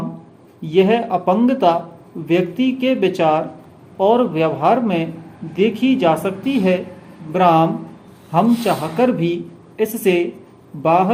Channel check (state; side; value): identical; both; correlation 1.00